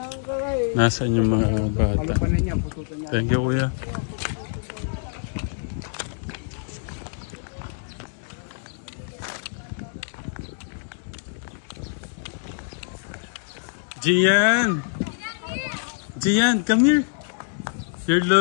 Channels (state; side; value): silent; right; digital silence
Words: Nasaan yung mga bata? Palupanan niya, pututan niya. Thank you, kuya. Gian! Gian, come here. Your